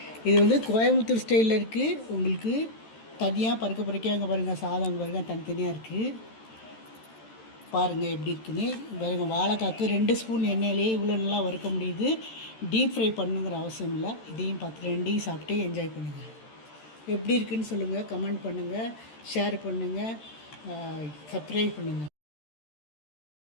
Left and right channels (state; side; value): late; right; 13 ms